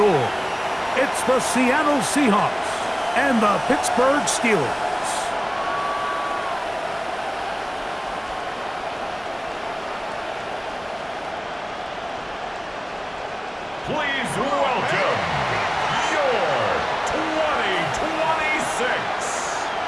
It's the Seattle Seahawks and the Pittsburgh Steelers. Please welcome your 2026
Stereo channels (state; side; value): identical; both; correlation 1.00